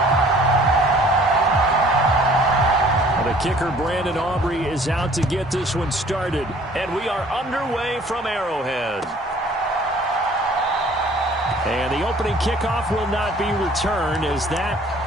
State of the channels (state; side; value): normal; both; correlation 0.54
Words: The kicker, Brandon Aubrey, is out to get this one started. And we are underway from Arrowhead. And the opening kickoff will not be returned, as that